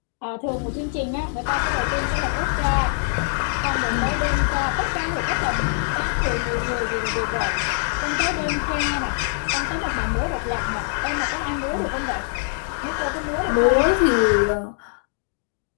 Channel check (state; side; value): silent; right; digital silence